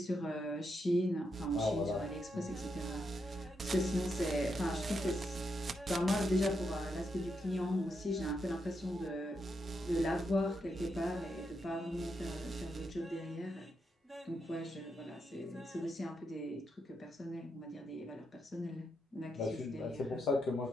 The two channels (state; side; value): normal; both; correlation 0.82